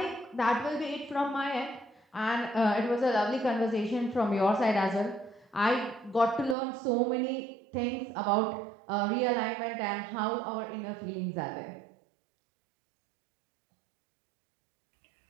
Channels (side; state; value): left; drops out; at 6.6 s